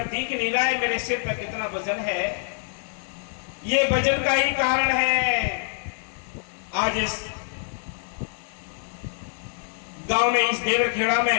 दिख नहीं रहा है मेरे सिर पे कितना वजन है। ये वजन का ही कारण है आज इस गांव में, इस देवरखेड़ा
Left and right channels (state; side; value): silent; right; 61 dB below the other